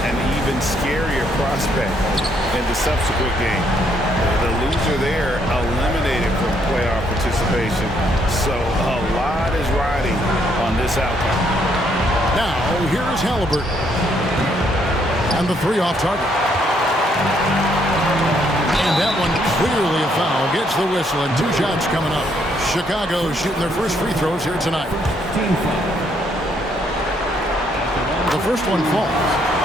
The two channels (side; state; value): both; normal; correlation 0.71